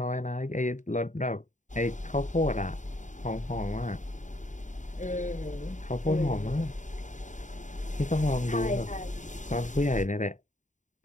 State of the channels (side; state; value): right; late; 0.36 ms